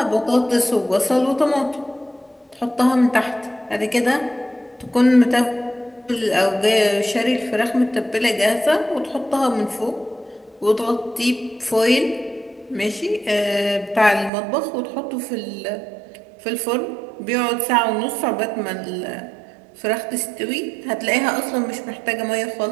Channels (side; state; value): left; drops out; at 14.3 s